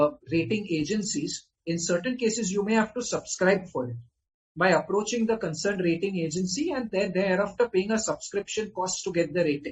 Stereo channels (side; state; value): both; identical; correlation 1.00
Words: rating agencies, in certain cases, you may have to subscribe for it by approaching the concerned rating agency and then thereafter paying a subscription cost to get the